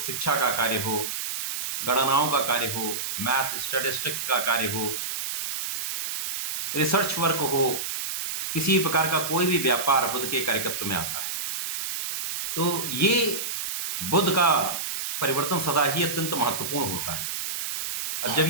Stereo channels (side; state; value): right; noise; hiss, 4 dB below the sound